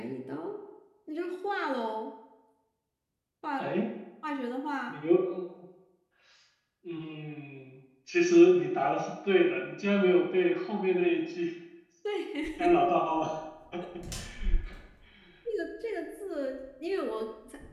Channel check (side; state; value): both; identical; correlation 1.00